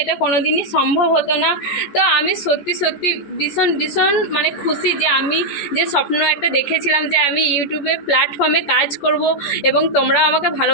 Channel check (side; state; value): right; late; 14 ms